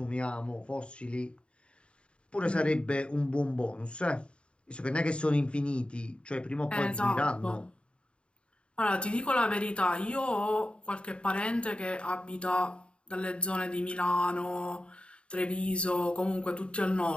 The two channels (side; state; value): right; late; 0.056 ms